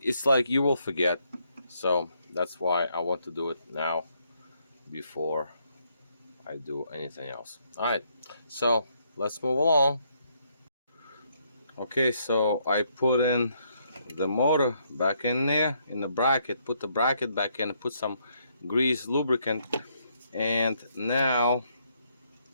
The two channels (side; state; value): both; inverted; correlation -0.73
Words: It's like you will forget, so that's why I want to do it now before I do anything else. All right, so let's move along. Okay, so I put in the motor back in there in the bracket, put the bracket back in, put some grease lubricant, and now,